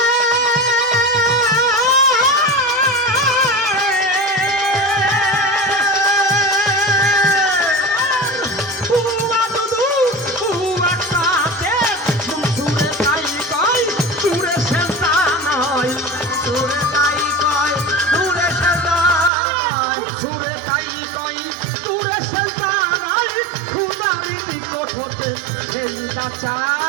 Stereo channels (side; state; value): left; drops out; at 19.3 s